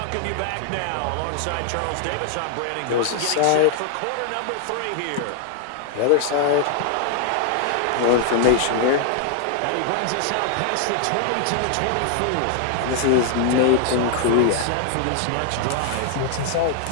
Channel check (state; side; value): different; both; correlation 0.00